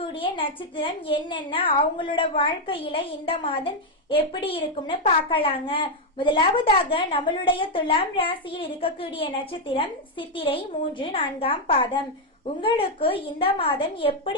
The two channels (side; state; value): both; normal; correlation 0.01